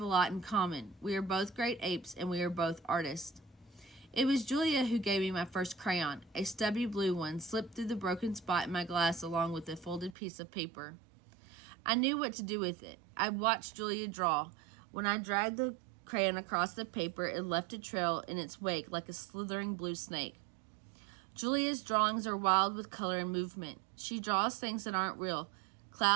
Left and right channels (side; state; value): left; drops out; at 10.2 s